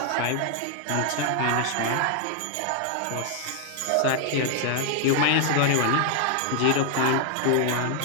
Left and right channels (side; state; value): both; different; correlation 0.00